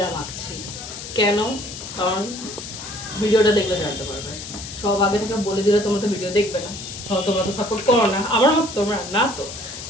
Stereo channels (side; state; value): left; noise; hiss, 10 dB below the sound